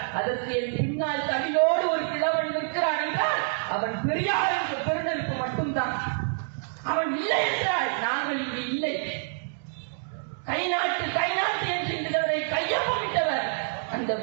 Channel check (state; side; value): silent; left; digital silence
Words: அதற்கு என் பின்னால் தமிழோடு ஒரு கிழவன் நிற்கிறான் என்றால் அவன் பெரியாருக்கு பெருந்தெடுப்பு மட்டும்தான். அவன் இல்லை என்றால் நாங்கள் இங்கு இல்லை. கை நாட்டு என்று இந்தவரை கையொப்பமிட்டவர் அந்த